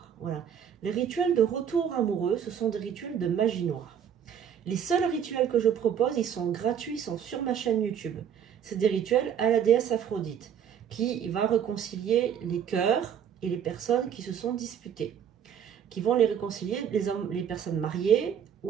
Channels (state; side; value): quieter; left; 8.4 dB